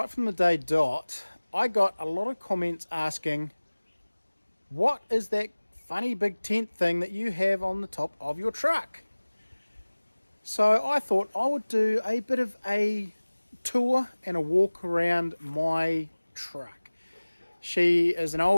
from the day dot, I got a lot of comments asking, what is that funny big tent thing that you have on the top of your truck? So I thought I would do a bit of a tour and a walk around my truck. She is an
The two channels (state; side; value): inverted; both; correlation -1.00